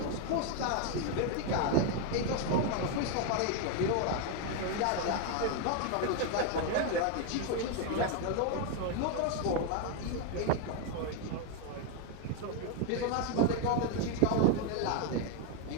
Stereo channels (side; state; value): both; different; correlation 0.01